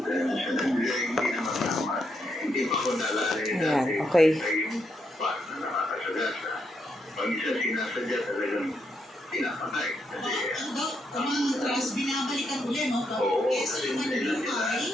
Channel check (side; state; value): both; normal; correlation 0.79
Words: Hindi naman tama. Hindi pa ko nalala Ayan, okay. yung part na nakakasagasa. Pag isa sinasadya talagang pinapatay. Ang trust, binabalikan ulit, no? Kasi naman yung